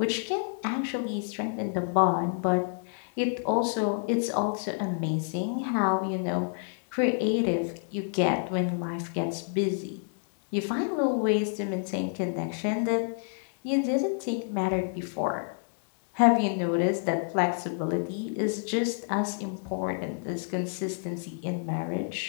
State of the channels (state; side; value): silent; right; digital silence